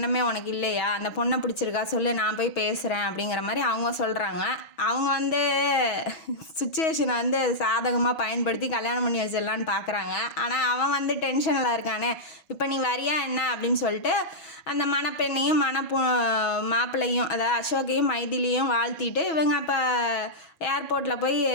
உனக்கு இல்லையா, அந்த பொண்ணை பிடிச்சிருக்கா சொல்லு, நான் போய் பேசுகிறேன் அப்படிங்கிற மாதிரி அவங்க சொல்கிறாங்க. அவங்க வந்து சுச்சுவேஷனை வந்து சாதகமாக பயன்படுத்தி கல்யாணம் பண்ணி வச்சிடலான்னு பார்க்குறாங்க. ஆனால் அவன் வந்து டென்ஷனில் இருக்கானே, இப்போ நீ வரியா என்ன அப்படின்னு சொல்லிட்டு அந்த மணப்பெண்ணையும் மாப்பிள்ளையும் அதாவது அசோக்கையும் மைதிலியும் வாழ்த்திட்டு இவங்க இப்போ ஏர்போர்ட்டில் போய்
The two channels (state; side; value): late; right; 6.2 ms